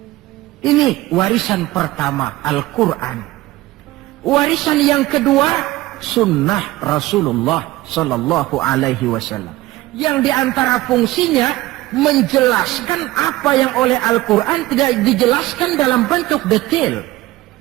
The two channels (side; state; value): left; quieter; 17.5 dB